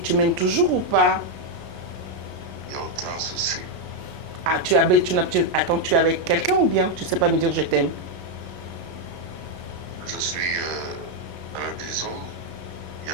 m'aimes toujours ou pas? Il n'y a aucun souci. Ah, attends, tu es avec quelqu'un ou bien tu ne sais pas me dire je t'aime? Je suis à la maison, il n'y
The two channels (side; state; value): left; late; 33 ms